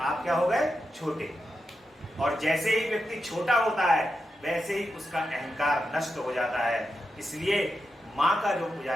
क्या हो गए? छोटे। और जैसे ही व्यक्ति छोटा होता है वैसे ही उसका अहंकार नष्ट हो जाता है। इसलिए माँ का जो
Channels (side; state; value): both; normal; correlation 0.88